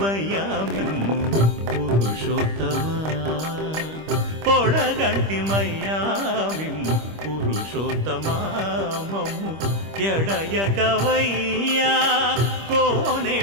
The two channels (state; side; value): late; left; 25 ms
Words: మిమ్ము పురుషోత్తమా, పొడగంటిమయ్యా మిమ్ము పురుషోత్తమా. మమ్ము ఎడయకవయ్యా